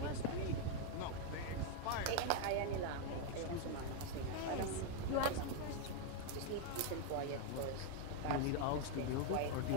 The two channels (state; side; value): different; both; correlation 0.00